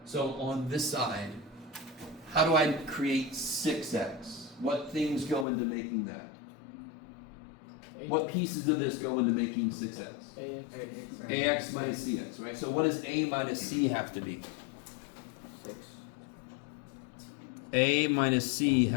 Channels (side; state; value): right; drops out; at 5.5 s